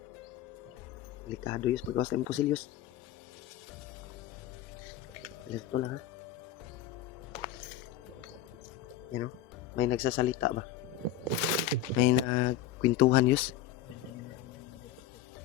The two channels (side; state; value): right; quieter; 10.6 dB